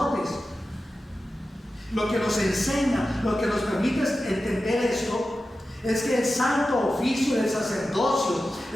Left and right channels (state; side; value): normal; both; correlation 0.93